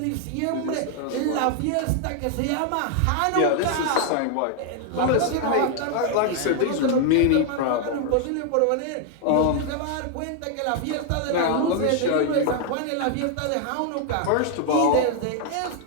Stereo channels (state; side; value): different; both; correlation 0.00